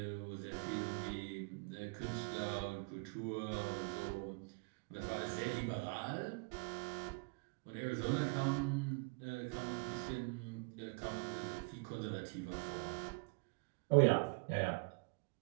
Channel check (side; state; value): left; quieter; 31.1 dB